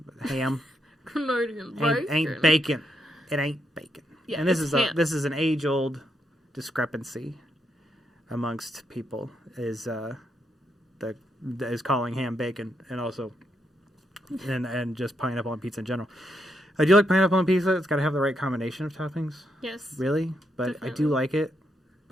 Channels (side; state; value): both; normal; correlation 0.79